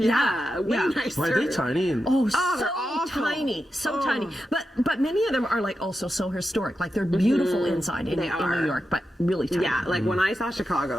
nicer. Why are they tiny? And Oh, they're so awful. tiny, so tiny. But many of them are like also so historic. Like they're beautiful inside in They are. New York, but really tiny. Yeah, like when I saw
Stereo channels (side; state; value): both; normal; correlation 0.89